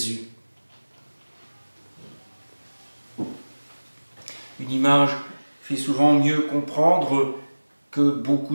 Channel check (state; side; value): inverted; both; correlation -1.00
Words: Une image fait souvent mieux comprendre que